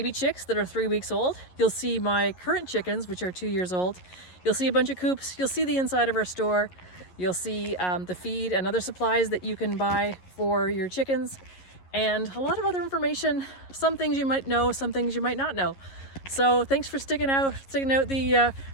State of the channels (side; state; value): right; late; 11 ms